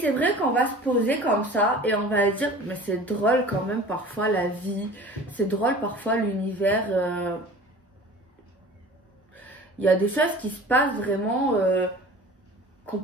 c'est vrai qu'on va se poser comme ça et on va dire, mais c'est drôle quand même parfois la vie, c'est drôle parfois l'univers. Il y a des choses qui se passent vraiment qu'on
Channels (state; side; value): normal; both; correlation 0.42